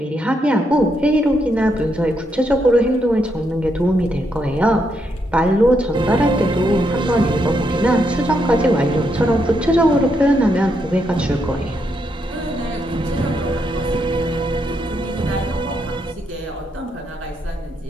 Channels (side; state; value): both; normal; correlation 0.79